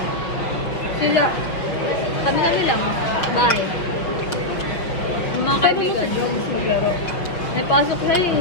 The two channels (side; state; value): right; late; 5.8 ms